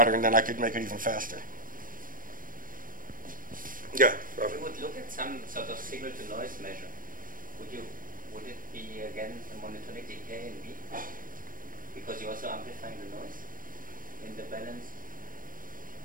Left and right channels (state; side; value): late; left; 0.40 ms